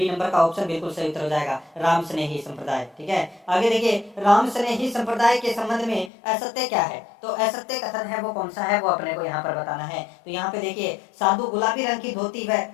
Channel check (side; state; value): right; drops out; at 6.1 s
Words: नंबर का ऑप्शन बिल्कुल सही उत्तर हो जाएगा, राम स्नेही संप्रदाय, ठीक है। आगे देखिए, राम स्नेही संप्रदाय के संबंध में असत्य क्या है? तो असत्य कथन है वो कौन सा है वो अपने को यहाँ पर बताना है। तो यहाँ पे देखिए, साधु गुलाबी रंग की धोती व